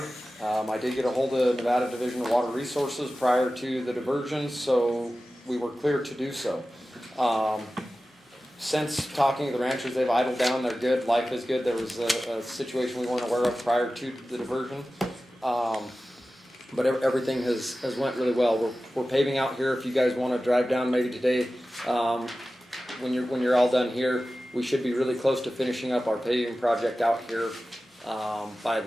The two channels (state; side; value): normal; both; correlation 0.95